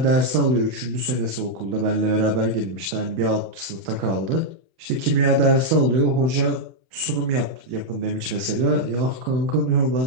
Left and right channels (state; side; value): late; left; 31 ms